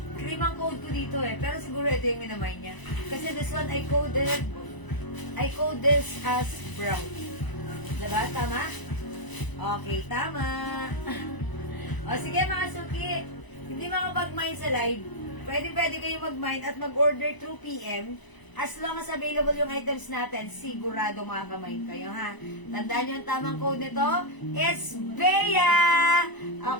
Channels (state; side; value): late; right; 1.0 ms